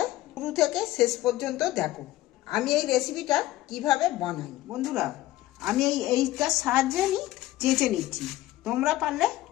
শুরু থেকে শেষ পর্যন্ত দেখো। আমি এই রেসিপিটা কিভাবে বানাই বন্ধুরা, আমি এইটার সাহায্যে আমি চেঁচে নিচ্ছি। তোমরা পারলে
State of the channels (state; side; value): quieter; right; 16.1 dB